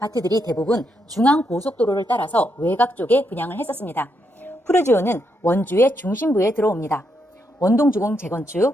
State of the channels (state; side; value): normal; both; correlation 0.79